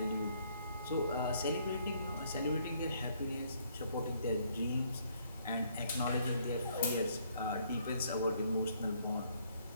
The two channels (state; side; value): inverted; both; correlation -0.66